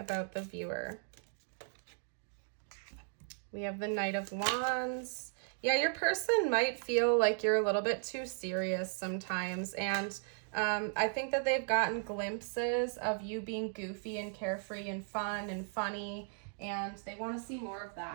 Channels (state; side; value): silent; left; 54 dB below the other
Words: the viewer? We have the Knight of Wands. Yeah, your person might feel like you're a little bit too serious sometimes, and I think that they've gotten glimpses of you being goofy and carefree and fun and funny, and they want to see more of